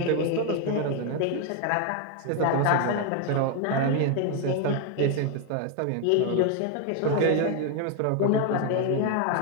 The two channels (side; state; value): both; different; correlation 0.01